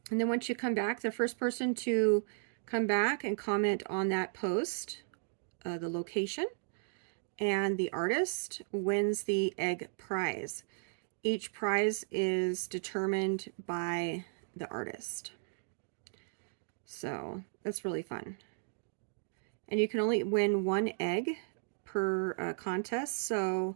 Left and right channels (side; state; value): left; silent; digital silence